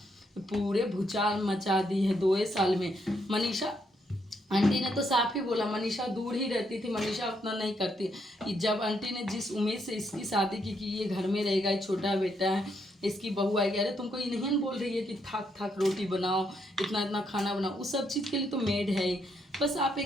पूरे भूचाल मचा दी है 2 साल में। मनीषा आंटी ने तो साफ ही बोला, मनीषा दूर ही रहती थी, मनीषा उतना नहीं करती। जब आंटी ने जिस उम्मीद से इसकी शादी की कि ये घर में रहेगा, ये छोटा बेटा है, इसकी बहू आएगी, अरे तुमको ये नहीं बोल रही है कि थक रोटी बनाओ, इतना खाना बनाओ, उस सब चीज़ के लिए तो मेड है ही। बस आप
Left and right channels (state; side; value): normal; both; correlation 0.76